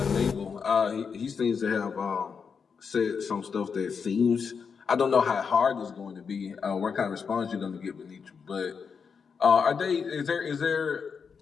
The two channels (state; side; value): quieter; right; 6.0 dB